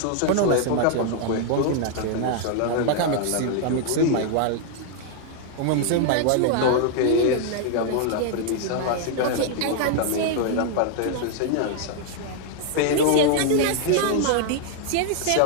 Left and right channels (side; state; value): both; different; correlation 0.00